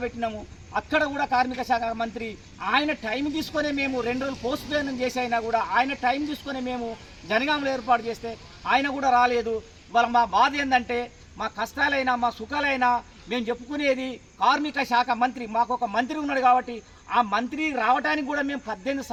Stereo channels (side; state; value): both; identical; correlation 1.00